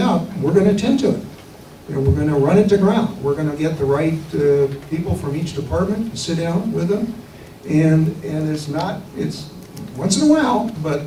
we're going to attend to it. You know, we're going to run it to ground. We're going to get the right people from each department to sit down with them. And it's once in a while, but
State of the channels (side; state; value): both; identical; correlation 1.00